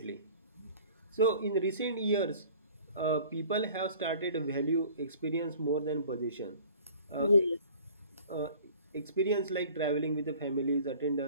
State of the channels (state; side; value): inverted; both; correlation -0.49